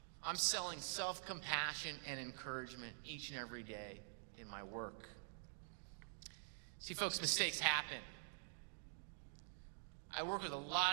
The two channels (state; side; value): silent; left; digital silence